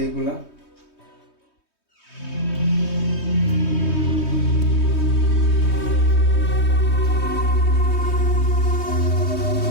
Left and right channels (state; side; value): late; right; 3.2 ms